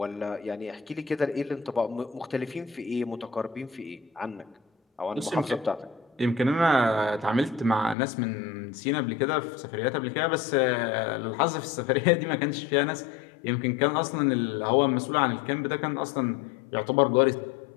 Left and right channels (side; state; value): right; drops out; at 8.0 s